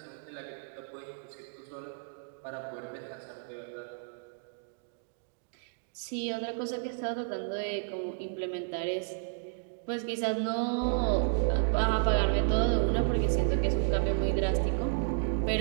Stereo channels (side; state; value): left; silent; 56 dB below the other